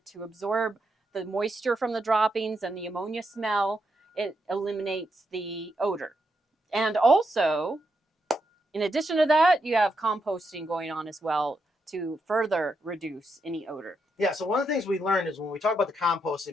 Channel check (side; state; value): both; normal; correlation 0.82